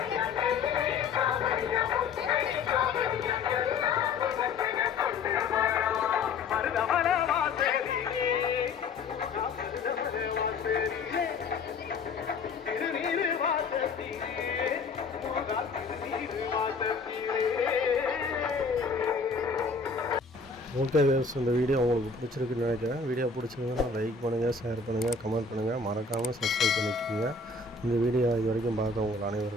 ஓகே வேவ்ஸ், இந்த வீடியோ உங்களுக்கு பிடிச்சிருக்குன்னு நினைக்கிறேன். வீடியோ பிடிச்சிருந்ததுன்னா லைக் பண்ணுங்கள், ஷேர் பண்ணுங்கள், கமெண்ட் பண்ணுங்கள், மறக்காமல் சப்ஸ்கிரைப் பண்ணிக்கோங்க. இந்த வீடியோ இது வரைக்கும் பார்த்த உங்கள்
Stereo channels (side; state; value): right; quieter; 4.5 dB